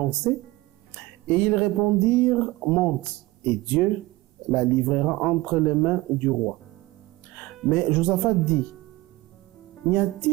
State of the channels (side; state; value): left; quieter; 19.7 dB